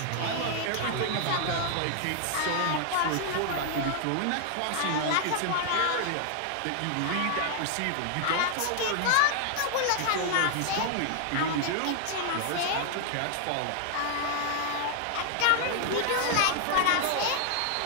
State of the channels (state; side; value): different; both; correlation 0.00